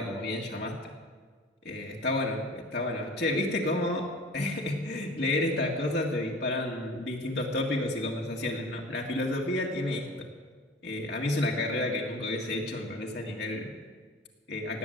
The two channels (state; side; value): normal; both; correlation 0.41